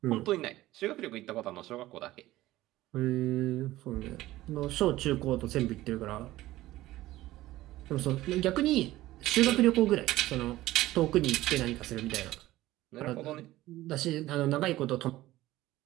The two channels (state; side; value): quieter; left; 16.4 dB